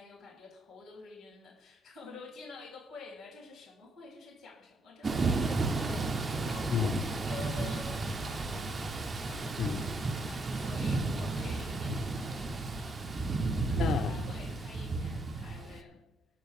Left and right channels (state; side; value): normal; both; correlation 0.73